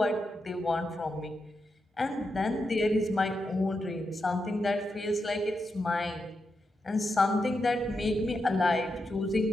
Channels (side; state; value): both; normal; correlation 0.86